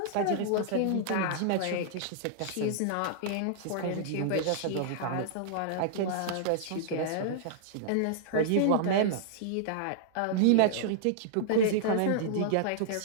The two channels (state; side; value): different; both; correlation -0.01